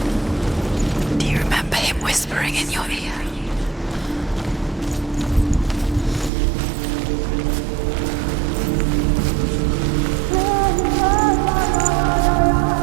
Do you remember him whispering in your ear?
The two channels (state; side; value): drops out; left; at 6.3 s